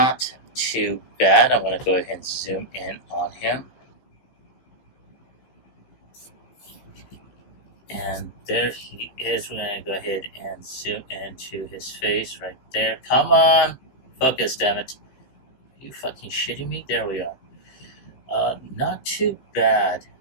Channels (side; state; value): right; late; 15 ms